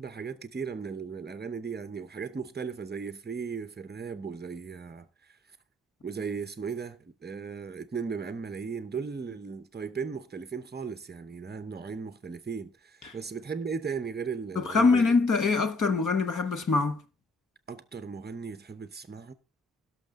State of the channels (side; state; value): both; normal; correlation 0.64